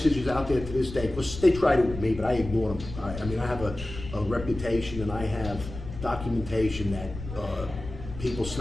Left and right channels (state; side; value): noise; left; rumble, 11 dB below the sound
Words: out there to this day, because they tried it with me, but I ignore them. I have a reputation, and I have documentation that people